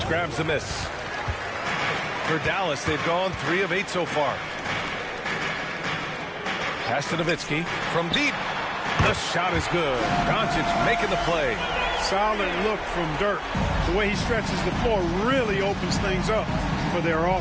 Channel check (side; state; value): both; identical; correlation 1.00